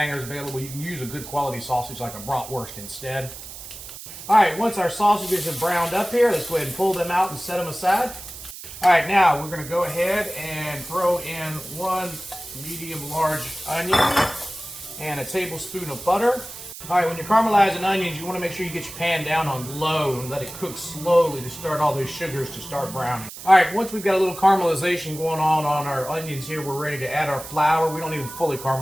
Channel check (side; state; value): right; noise; hiss, 13 dB below the sound